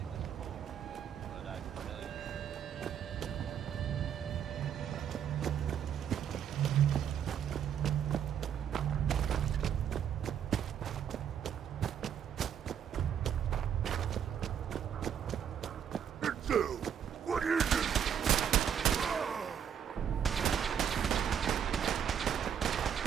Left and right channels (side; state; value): left; quieter; 8.6 dB